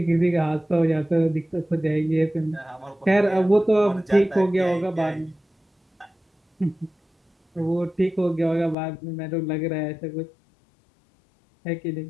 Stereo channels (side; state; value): right; drops out; at 8.8 s